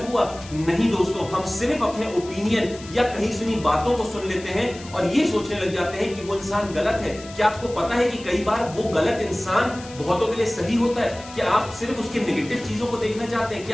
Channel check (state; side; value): noise; left; hiss, 18 dB below the sound